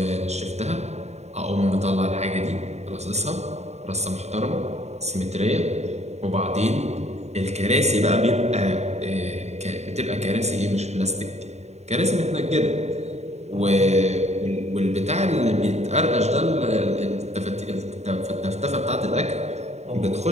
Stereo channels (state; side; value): late; left; 0.32 ms